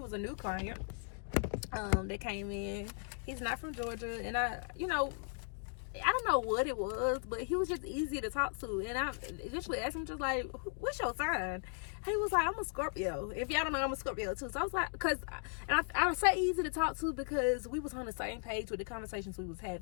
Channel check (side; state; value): right; silent; 53 dB below the other